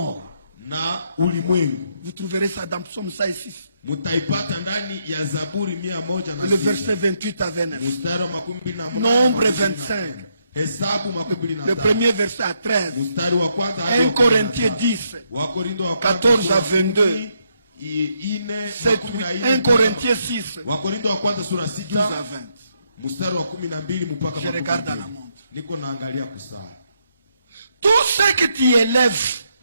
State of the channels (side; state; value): both; inverted; correlation -0.77